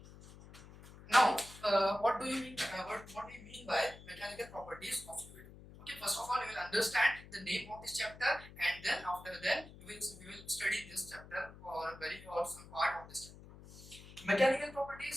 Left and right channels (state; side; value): noise; left; hum, 18 dB below the sound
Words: Now, what do you mean? What do you mean by mechanical properties of fluid? Okay, first of all, you will understand the name of this chapter, and then after that, we will study this chapter or some part of this chapter. Mechanical